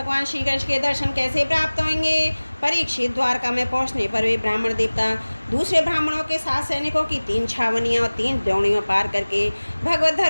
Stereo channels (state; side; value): inverted; both; correlation -1.00